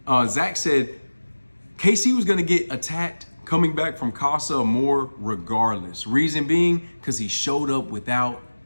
Zach said, Casey was going to get attacked coming back from Casa More regardless. Reason being, because he showed up with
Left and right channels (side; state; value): both; inverted; correlation -1.00